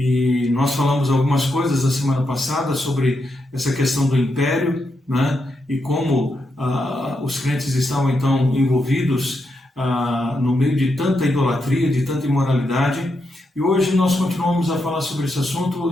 nós falamos algumas coisas na semana passada sobre essa questão do império, né, e como os crentes estavam então envolvidos no meio de tanta idolatria, de tanta imoralidade. E hoje nós continuamos a falar sobre esse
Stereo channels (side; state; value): both; normal; correlation 0.83